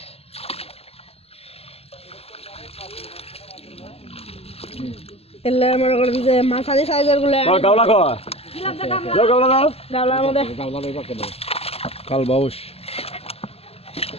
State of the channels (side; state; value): right; late; 0.29 ms